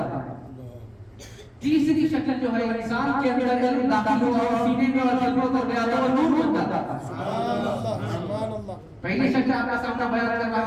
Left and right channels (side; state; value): both; identical; correlation 1.00